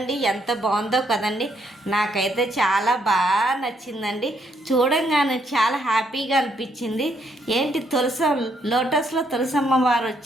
ఎంత బాగుందో కదండి. నాకైతే చాలా బాగా నచ్చిందండి. చూడంగానే చాలా హ్యాపీగా అనిపించింది. ఏంటి లోటస్లో తులసమ్మ వారు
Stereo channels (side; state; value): both; normal; correlation 0.73